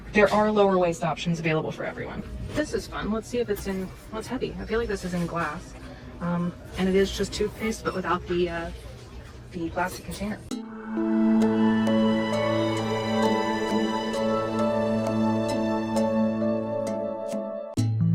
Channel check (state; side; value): identical; both; correlation 1.00